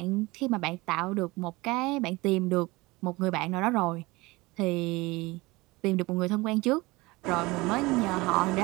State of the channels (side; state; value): left; quieter; 22.3 dB